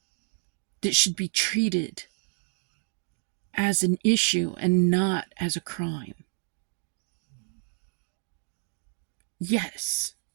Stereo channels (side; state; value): left; silent; 58 dB below the other